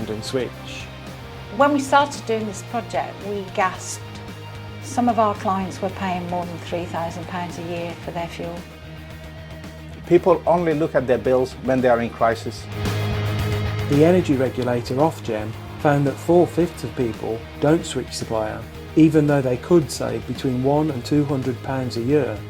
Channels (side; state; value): both; identical; correlation 1.00